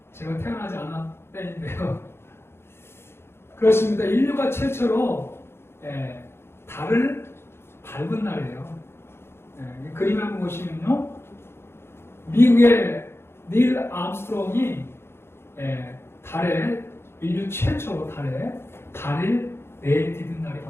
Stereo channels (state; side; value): late; right; 0.12 ms